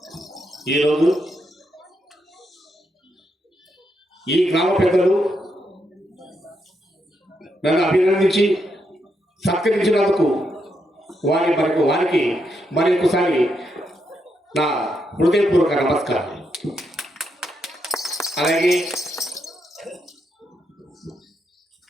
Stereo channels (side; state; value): both; normal; correlation 0.80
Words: ఈరోజు ఈ గ్రామ పెద్దలు నన్ను అభినందించి సత్కరించినందుకు వారికి మరొకసారి నా హృదయపూర్వక నమస్కారం. అలాగే